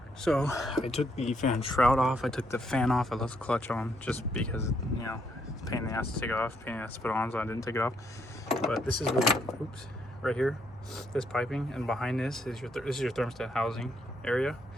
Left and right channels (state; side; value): normal; both; correlation 0.73